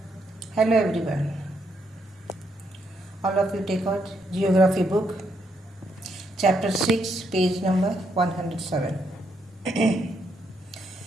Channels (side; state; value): both; normal; correlation 0.77